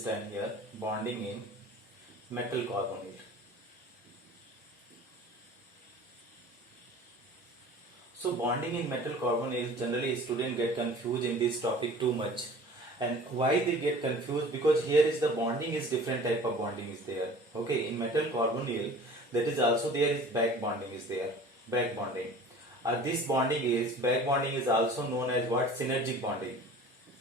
here bonding in metal carbonyl. So bonding in metal carbonyl, generally students get confused in this topic too much. And why they get confused? Because here is the bonding is different type of bonding is there. Okay, in metal carbonyl, that is also there is back bonding is there. Back bonding. This bonding is back bonding is also known as what? Synergic bonding.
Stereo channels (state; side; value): normal; both; correlation 0.44